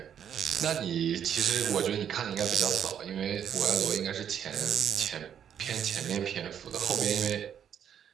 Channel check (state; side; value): quieter; left; 8.8 dB